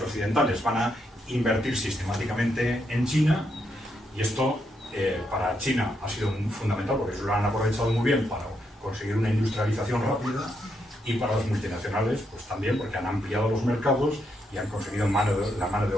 occidentales van a invertir sistemáticamente en China y esto para China ha sido fundamental porque lo han aprovechado muy bien para conseguir una industrialización rápida y para las multinacionales pues también porque han ampliado los mercados y han conseguido la mano de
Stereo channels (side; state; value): both; normal; correlation 0.79